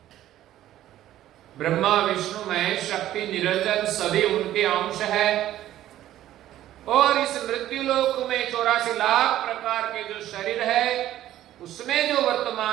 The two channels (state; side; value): quieter; left; 13.2 dB